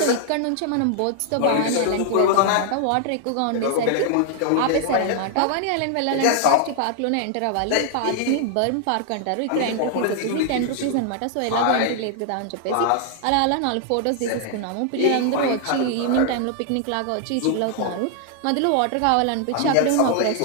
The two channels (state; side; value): different; both; correlation 0.00